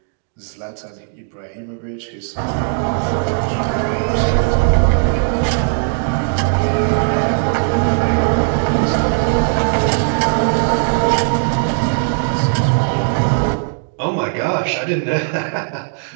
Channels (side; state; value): left; silent; 61 dB below the other